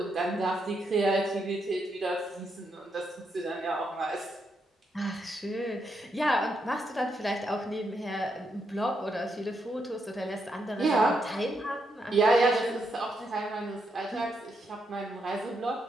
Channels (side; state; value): both; normal; correlation 0.80